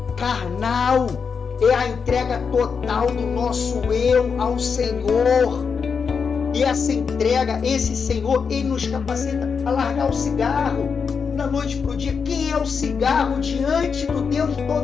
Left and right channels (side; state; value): right; quieter; 5.9 dB